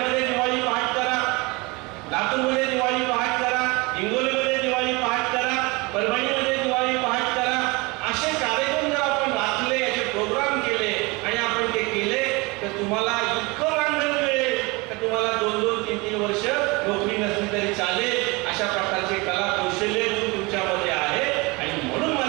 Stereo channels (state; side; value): quieter; left; 25.6 dB